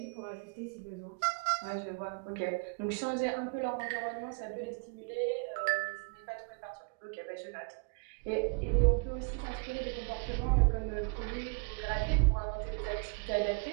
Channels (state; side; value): quieter; left; 34.3 dB